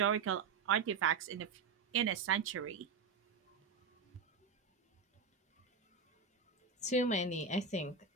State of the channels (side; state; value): left; quieter; 5.2 dB